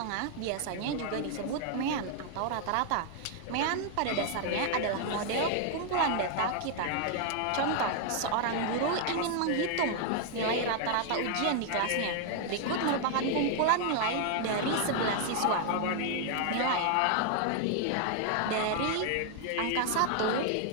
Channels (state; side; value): different; both; correlation 0.00